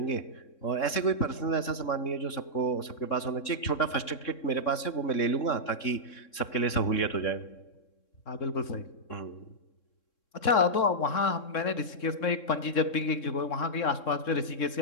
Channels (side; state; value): right; late; 3.6 ms